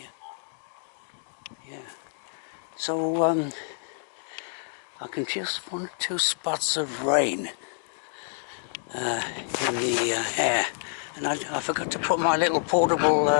Yeah. So I can just 1 or 2 spots of rain in the air, and I forgot to put my little portable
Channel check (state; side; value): silent; right; digital silence